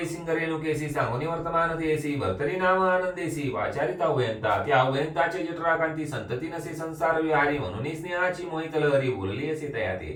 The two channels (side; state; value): both; identical; correlation 1.00